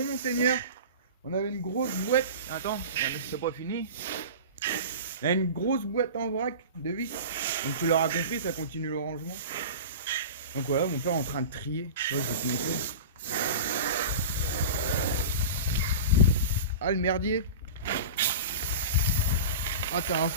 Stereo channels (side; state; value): both; inverted; correlation -0.31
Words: monseigneur. On avait une grosse boîte. Attends, c'est pas fini. Il y a une grosse boîte en vrac de vis. Donc tu l'auras compris, ça continue le rangement. Donc voilà, mon père est en train de trier. Ouais, je vais te montrer. Ah, le merdier. Ah, t'es un